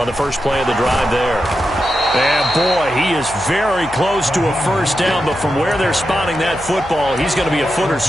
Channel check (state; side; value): noise; left; hum, 17 dB below the sound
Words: the first play of the drive there. And boy, he is very close to a first down, but from where they're spotting that football, he's going to be a foot or